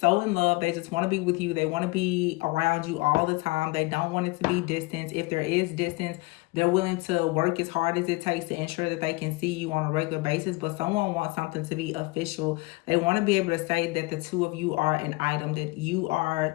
in love. They just want to be with you. They want to be around you all the time. They don't want it to be distance. If there is distance, they're willing to work as hard as it takes to ensure that they can see you on a regular basis. But someone wants something to be official. They want to be able to say that the two of you are an item, that you are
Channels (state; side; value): quieter; right; 24.3 dB